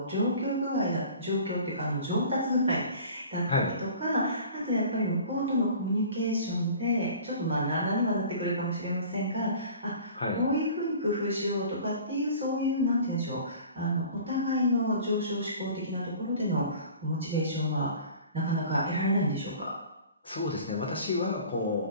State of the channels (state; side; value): inverted; both; correlation -0.44